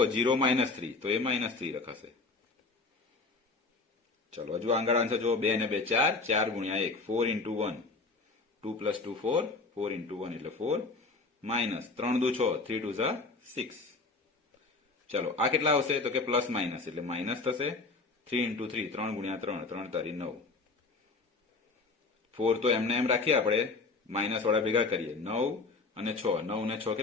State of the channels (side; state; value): right; quieter; 3.8 dB